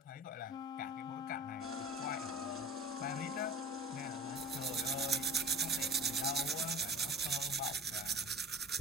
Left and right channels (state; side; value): normal; both; correlation 0.39